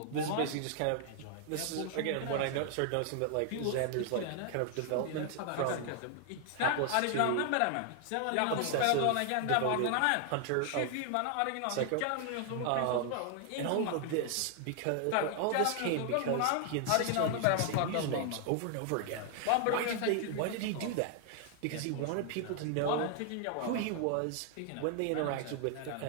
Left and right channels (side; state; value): both; different; correlation 0.00